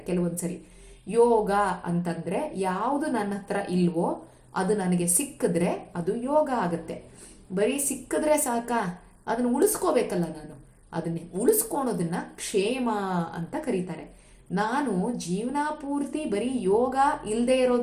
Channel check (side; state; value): both; identical; correlation 1.00